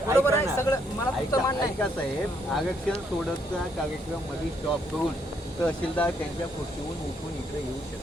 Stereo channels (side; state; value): both; normal; correlation 0.72